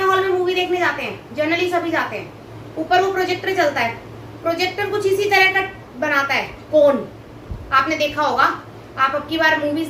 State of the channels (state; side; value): identical; both; correlation 1.00